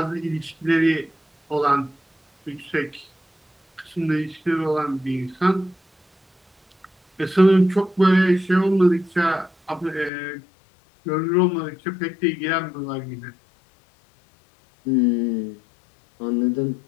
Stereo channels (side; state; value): right; drops out; at 10.1 s